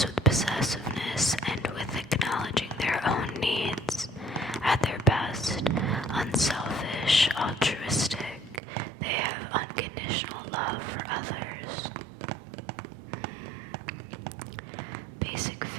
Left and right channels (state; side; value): drops out; left; at 8.6 s